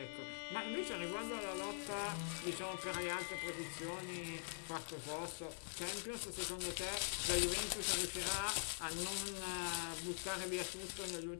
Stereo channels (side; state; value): right; silent; digital silence